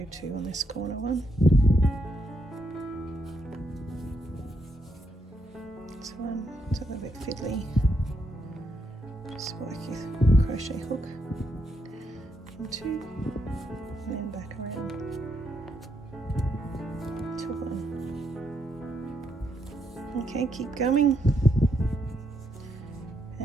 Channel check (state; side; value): normal; both; correlation 0.78